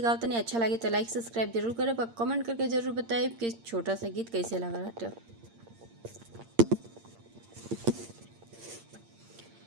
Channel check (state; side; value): late; left; 8.7 ms